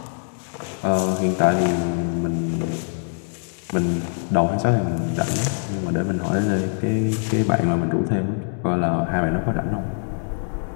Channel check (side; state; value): right; silent; digital silence